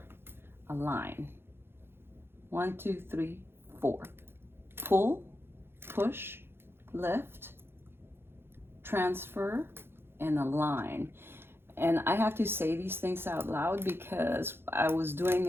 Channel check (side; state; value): left; late; 0.11 ms